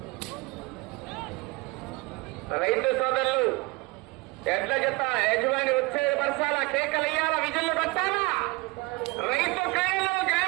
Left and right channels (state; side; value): quieter; left; 24.3 dB